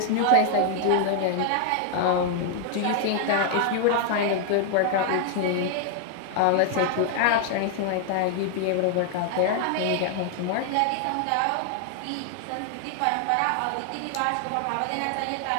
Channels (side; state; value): both; different; correlation 0.00